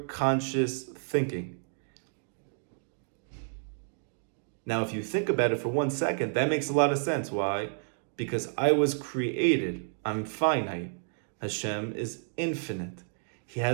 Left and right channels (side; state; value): left; silent; digital silence